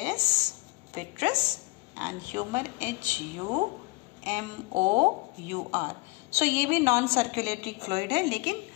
vitreous, and humour HUMOUR। सो ये भी नॉन सर्कुलेटरी फ्लूइड है, लेकिन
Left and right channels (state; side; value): quieter; right; 24.4 dB